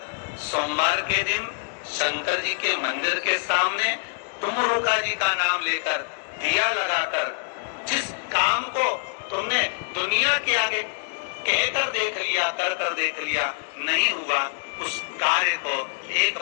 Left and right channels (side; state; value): right; silent; digital silence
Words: सोमवार के दिन शंकर जी के मंदिर के सामने तुमरुका जी का नाम लेकर दिया लगाकर, जिस काम को तुमने दुनिया के आगे कहकर देख लिया, कर कर देख लिया, नहीं हुआ, उस कार्य को एक